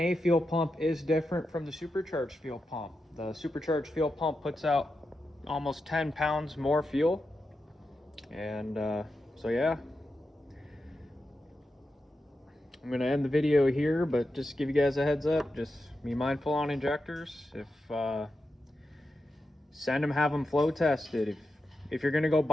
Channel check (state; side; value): normal; both; correlation 0.89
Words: fuel pump is different from the supercharged fuel pump. The supercharged fuel pump puts out almost 10 pounds more fuel. And so yeah. I'm going to end the video here, but just give you guys a heads up. Just be mindful on injectors. If send them, have them flow tested. If you're going to go